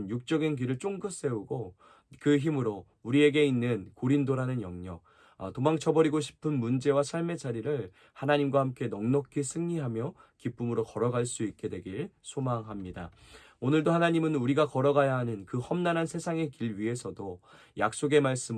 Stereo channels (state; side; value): identical; both; correlation 1.00